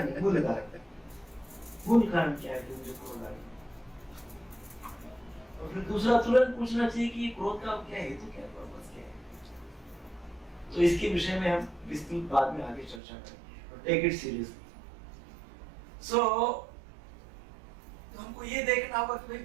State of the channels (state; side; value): drops out; left; at 13.0 s